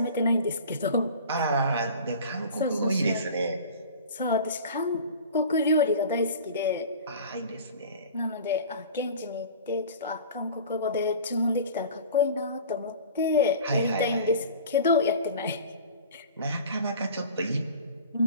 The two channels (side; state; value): both; inverted; correlation -0.40